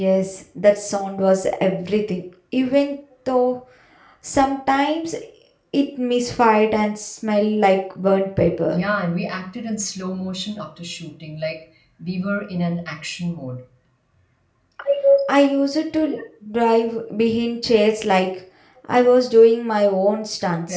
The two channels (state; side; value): identical; both; correlation 1.00